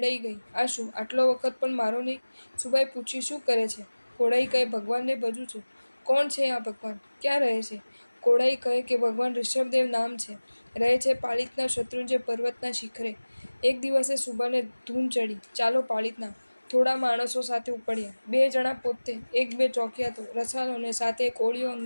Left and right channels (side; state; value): both; inverted; correlation -1.00